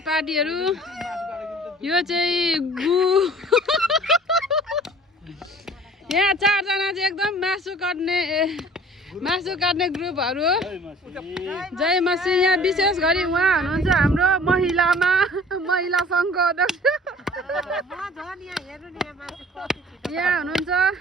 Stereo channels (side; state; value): both; normal; correlation 0.49